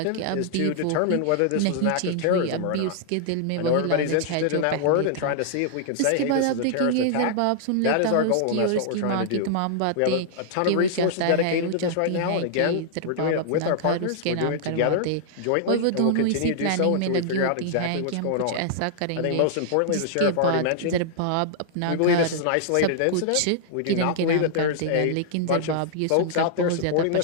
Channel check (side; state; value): both; different; correlation -0.01